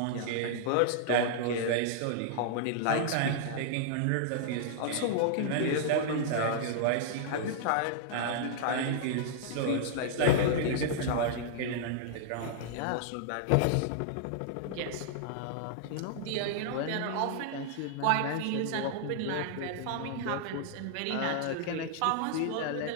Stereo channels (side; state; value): both; different; correlation -0.01